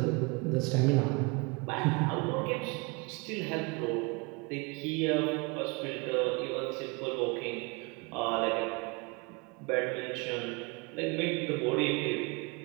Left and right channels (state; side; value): quieter; left; 29.0 dB